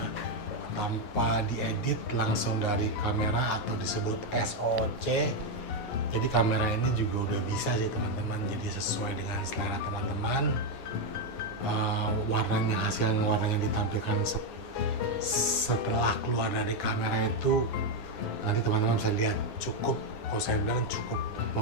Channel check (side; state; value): right; late; 7.5 ms